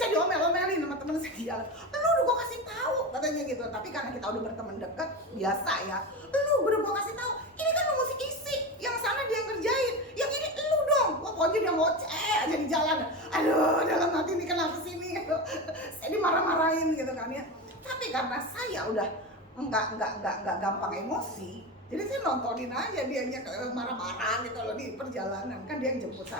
diomel-omelin sama temen saya di jalan. Lu udah gua kasih tahu katanya gitu. Tapi karena kita udah berteman dekat, biasa ya. Lu udah gua kasih tahu, ini kan lu mesti isi. Yang sana dia ngerjain, yang ini lu dong. Wah pokoknya dia ngoceh aja di jalan. Aduh dalam hati ini kenapa sih ini? Saya dimarah-marahin gitu kan ya. Tapi karena saya udah nggak gampang emosi, jadi saya nontonin aja dianya marah-marah gitu loh di perjalanan. Kan dia yang jemput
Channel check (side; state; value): both; normal; correlation 0.22